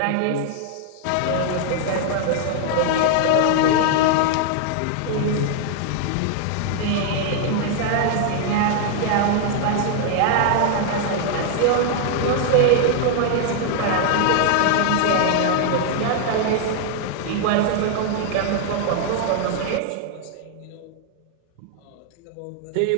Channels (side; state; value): both; different; correlation 0.00